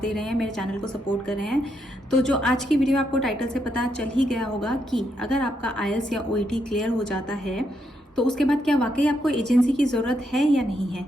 रहे हैं, मेरे चैनल को सपोर्ट कर रहे हैं। तो जो आज की वीडियो आपको टाइटल से पता चल ही गया होगा कि अगर आपका आईएलटीएस या ओईटी क्लियर हो जाता है तो उसके बाद क्या वाकई आपको एजेंसी की ज़रूरत है या नहीं है।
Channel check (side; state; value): both; normal; correlation 0.79